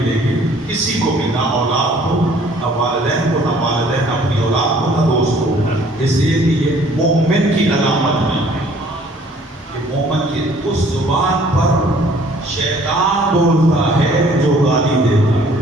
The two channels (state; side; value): normal; both; correlation 0.57